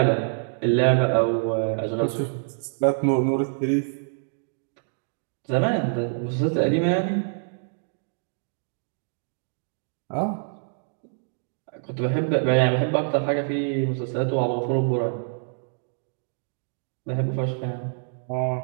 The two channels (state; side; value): silent; left; digital silence